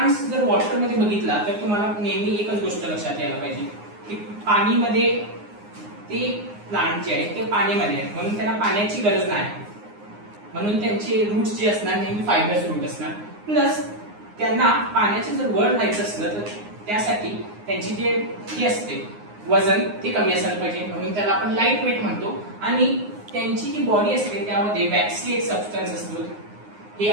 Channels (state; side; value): late; left; 9.6 ms